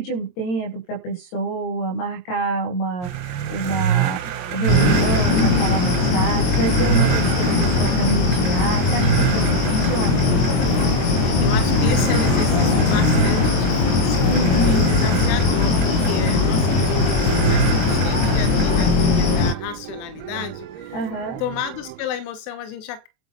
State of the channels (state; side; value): late; right; 23 ms